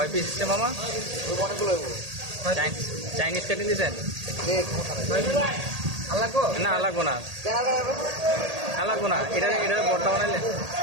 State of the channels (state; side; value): late; left; 1.8 ms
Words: পিস হচ্ছে মামা? চাইনিজ কেটে দিয়েছেন? না লাগবো না, লাগবো না। এটা বড়টা বানাইলে